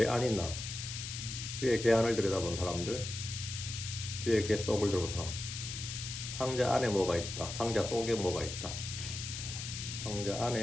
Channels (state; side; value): noise; left; hiss, 7 dB below the sound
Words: 안이 나. 주의 궤 안을 들여다본 사람들, 주의 궤 속을 들여다본 사람. 상자 안에 뭐가 있다, 상자 속에 뭐가 있다. 상자